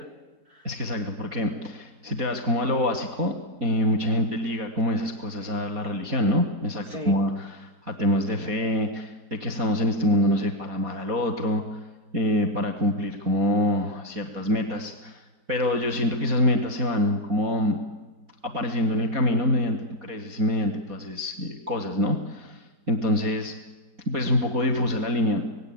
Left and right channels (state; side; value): late; left; 4.2 ms